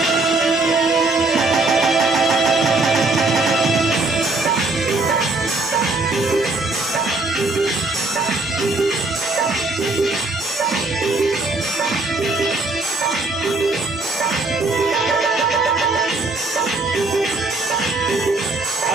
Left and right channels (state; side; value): quieter; left; 3.2 dB